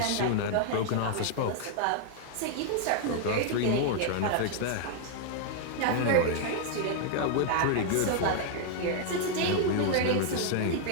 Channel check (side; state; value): both; different; correlation 0.00